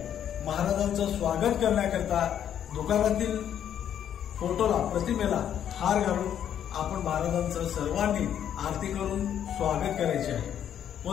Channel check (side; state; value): right; quieter; 9.7 dB